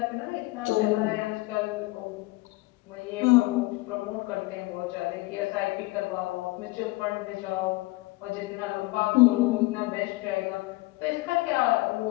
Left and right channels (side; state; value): right; quieter; 21.9 dB